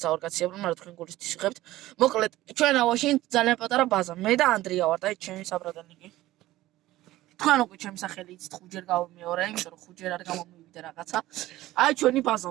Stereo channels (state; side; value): quieter; left; 16.2 dB